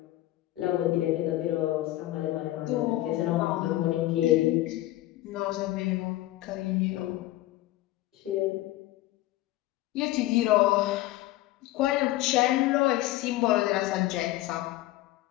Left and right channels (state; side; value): quieter; right; 16.2 dB